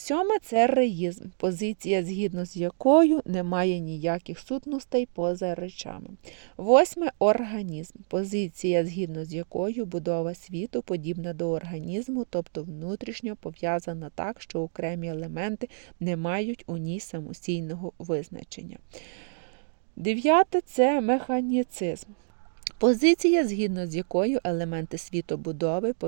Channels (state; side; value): silent; left; digital silence